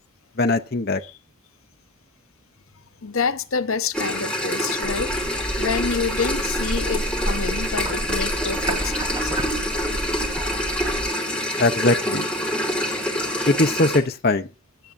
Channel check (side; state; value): both; normal; correlation 0.31